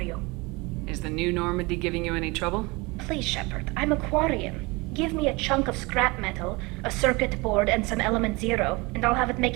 you? Is the new Normandy giving you any trouble? Please, Shepard, I'm a Quarian. Give me a chunk of scrap metal, a circuit board, and some element zero, and I'll have it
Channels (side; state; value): left; quieter; 25.2 dB